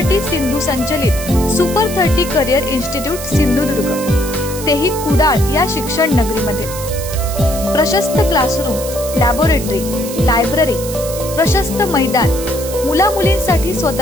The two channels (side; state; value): right; noise; hiss, 10 dB below the sound